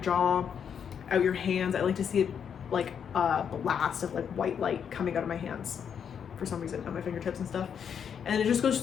out your hands. I like to see it like a blast of like white light coming out of my hands for some reason, on my fingertips and stuff. And it just goes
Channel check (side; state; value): right; quieter; 7.7 dB